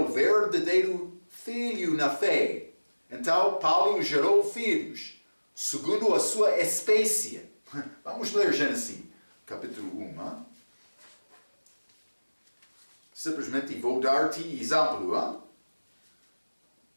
verdadeiro filho na fé. Então Paulo gerou filhos, segundo a sua espécie. Vamos ler Gênesis, capítulo 1. Simplesmente vou dar-te exemplo.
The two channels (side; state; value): both; inverted; correlation -1.00